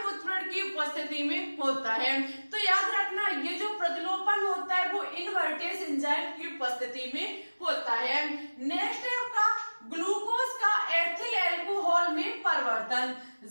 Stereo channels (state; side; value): inverted; both; correlation -1.00